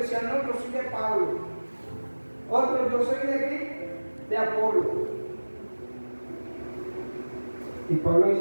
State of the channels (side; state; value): both; inverted; correlation -1.00